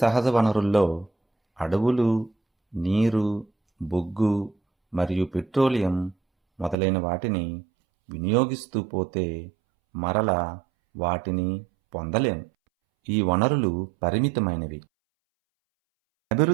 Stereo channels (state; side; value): drops out; left; at 6.8 s